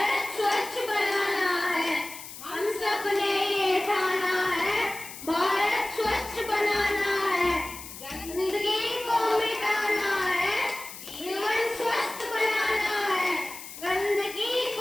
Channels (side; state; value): left; noise; hiss, 13 dB below the sound